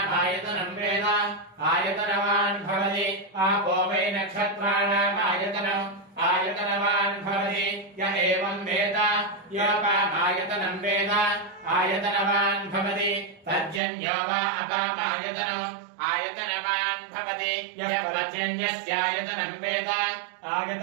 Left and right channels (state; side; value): drops out; left; at 13.8 s